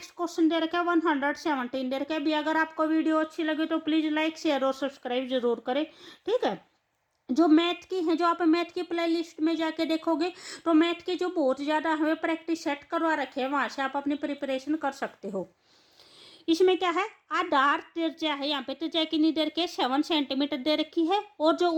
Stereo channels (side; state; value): both; identical; correlation 1.00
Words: क्वेश्चन दे रखा है 117 दे रखा है। भी अगर आपको वीडियो अच्छी लगे तो प्लीज़ लाइक शेयर और सब्सक्राइब जरूर करें। ठीक है, जो मैथ की है, जो आप मैथ की प्ले लिस्ट में जाके देखोगे तो मैथ के जो बहुत ज़्यादा हमें प्रैक्टिस सेट करवा रखे हैं वहाँ से आप अपनी प्रिपरेशन कर सकते हो। इसमें क्या है, आधार त्रिज्या है, यहाँ पे त्रिज्या कितनी दे रखी है 7 सेंटीमीटर दे रखी है, और जो